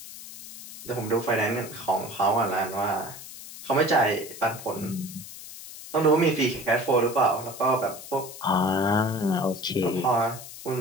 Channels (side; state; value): left; noise; hiss, 14 dB below the sound